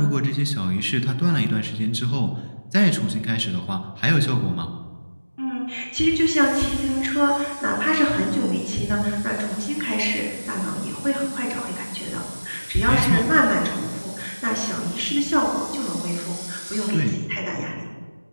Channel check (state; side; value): inverted; both; correlation -1.00